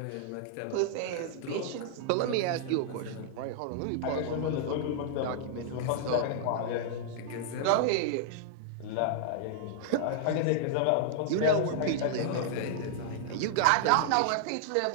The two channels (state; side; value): different; both; correlation -0.01